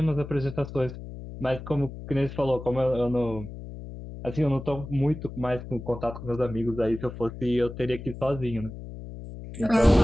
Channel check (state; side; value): noise; left; hum, 11 dB below the sound